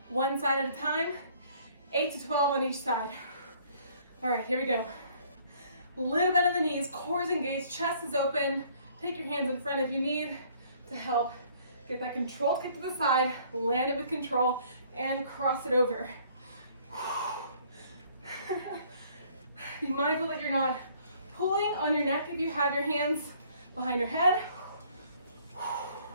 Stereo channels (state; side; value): inverted; both; correlation -0.59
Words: One side at a time, 8 to 12 on each side. All right, here we go. Little bend in the knees, core is engaged, chest is open. Take your hands in front if you need to help get that control kick to the side, land it with control, and cross it over. Be mindful that you're not pulling on your neck if you have your hands behind your head.